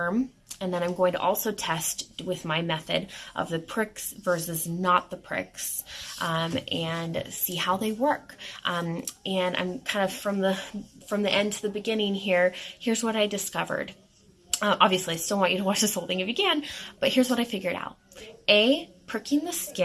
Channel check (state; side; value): identical; both; correlation 1.00